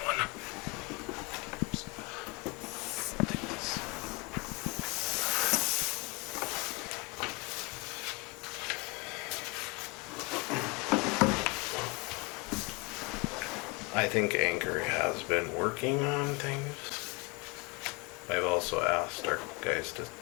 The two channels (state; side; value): quieter; right; 27.6 dB